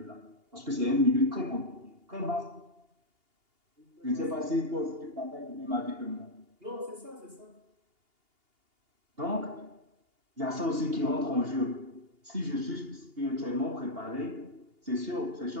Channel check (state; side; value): late; left; 2.8 ms